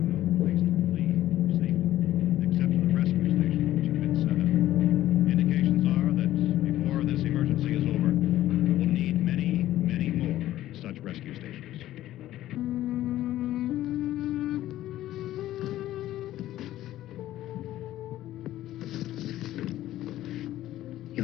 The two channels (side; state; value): right; quieter; 14.1 dB